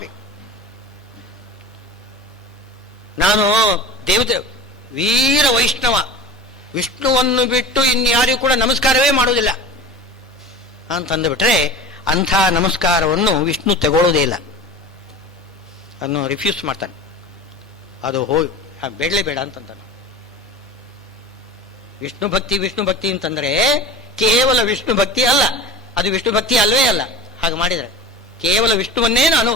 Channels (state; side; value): normal; both; correlation 0.35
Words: ನಾನು ದೇವತೆ ವೀರ ವೈಷ್ಣವ, ವಿಷ್ಣುವನ್ನು ಬಿಟ್ಟು ಇನ್ಯಾರಿಗೂ ಕೂಡ ನಮಸ್ಕಾರವೇ ಮಾಡುವುದಿಲ್ಲ ಅಂತಂದುಬಿಟ್ರೆ ಅಂಥ ನಮಸ್ಕಾರವನ್ನು ವಿಷ್ಣು ತಗೊಳ್ಳೋದೇ ಇಲ್ಲ, ಅದನ್ನು ರಿಫ್ಯೂಸ್ ಮಾಡ್ತಾನೆ. ಅದು ಬೇಡಲೇ ಬೇಡ ಅಂತಂತಾನೆ. ವಿಷ್ಣು ಭಕ್ತಿ ಅಂತಂದ್ರೆ ಕೇವಲ ವಿಷ್ಣು ಭಕ್ತಿ ಅಲ್ಲ, ಅದು ವಿಷ್ಣು ಭಕ್ತಿ ಅಲ್ವೇ ಅಲ್ಲ. ಹಾಗೆ ಮಾಡಿದರೆ ಕೇವಲ ವಿಷ್ಣುವನ್ನೇ ನಾನು